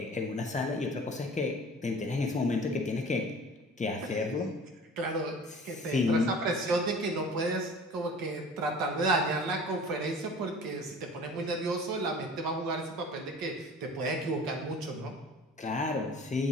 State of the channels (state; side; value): normal; both; correlation 0.43